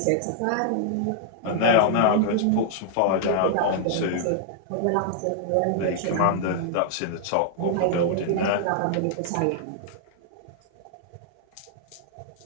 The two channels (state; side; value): different; both; correlation -0.01